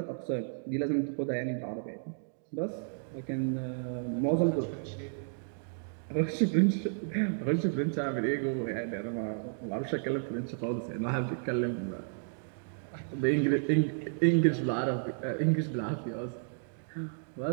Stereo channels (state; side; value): silent; left; digital silence